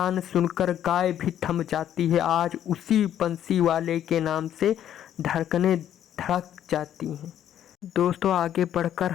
सुनकर गाय भी थम जाती है। आज उसी बंसी वाले के नाम से धड़कनें धड़क जाती हैं। दोस्तों, आगे बढ़कर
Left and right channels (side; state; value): right; quieter; 10.6 dB